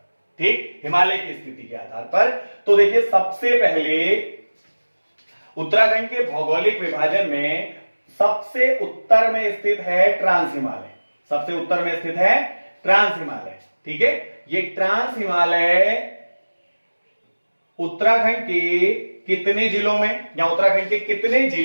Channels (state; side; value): inverted; both; correlation -1.00